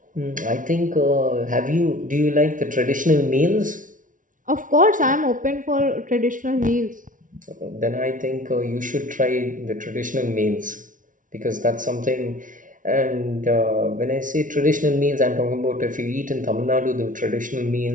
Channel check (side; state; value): left; late; 0.38 ms